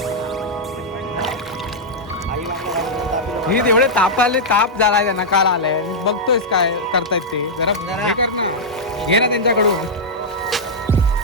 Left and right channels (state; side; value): normal; both; correlation -0.07